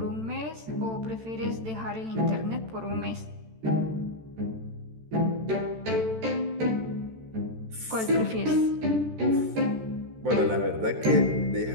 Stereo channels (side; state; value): left; late; 13 ms